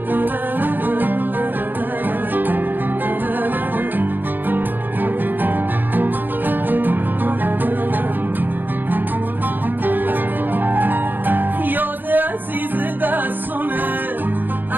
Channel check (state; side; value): late; left; 0.089 ms